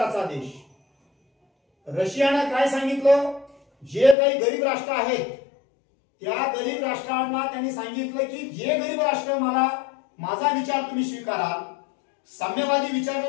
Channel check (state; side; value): drops out; right; at 4.2 s